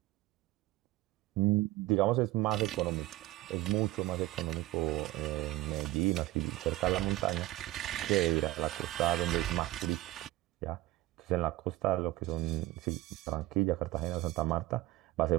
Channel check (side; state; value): left; quieter; 17.7 dB